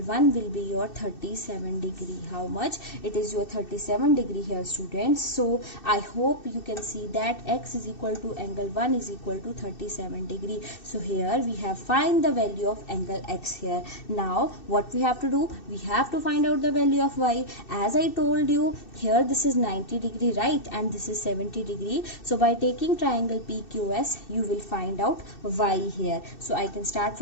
1 will be your 37 degree. How much? It is your 37 degree here students. So I hope you can see that X is equal to angle 1 is equal to 37 degree. So here we have find the value of angle X here. Now what we have to do? We have to find out the value of Y. As I told you, here this is 90 degree, right, and this is 70 degree. So by taking triangle PQS, you will find out Y here. So I can start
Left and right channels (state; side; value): late; right; 2.6 ms